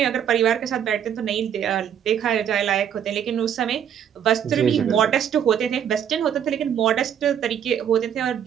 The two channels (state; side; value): quieter; left; 9.0 dB